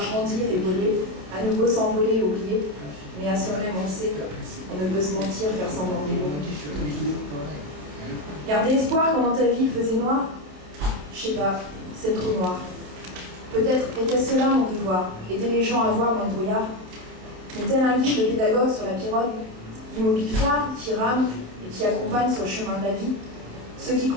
et voler, à nouveau s'envoler et oublier, mais à soi-même on sait, on ne peut se mentir, faire semblant d'oublier. Garder espoir quand dans ta vie il faisait noir, je sais pas, c'est trop noir. Peut-être était-ce cela mon devoir, aider les gens à voir dans le brouillard. Mais tel un guide, le pédagogue sur la pirogue, immobile phare qui rame et qui accompagne sur le chemin de la vie, ceux qui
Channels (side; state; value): left; late; 28 ms